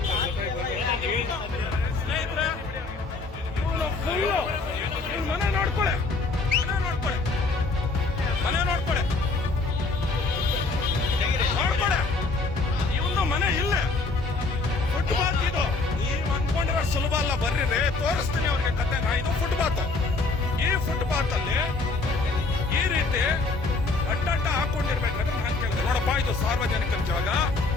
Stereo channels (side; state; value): right; quieter; 3.7 dB